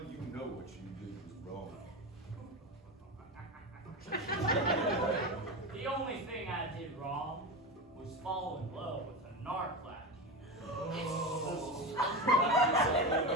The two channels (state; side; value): normal; both; correlation 0.21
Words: you know what you did was wrong. The only thing I did wrong was fall in love with a narc like you. Oh, I guess I'll live